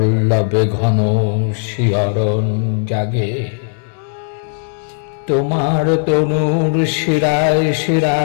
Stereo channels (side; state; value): right; silent; 69 dB below the other